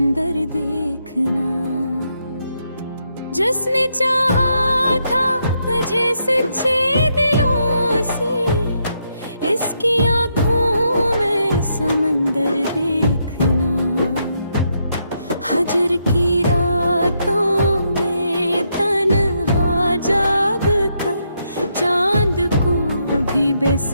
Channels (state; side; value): inverted; both; correlation -0.78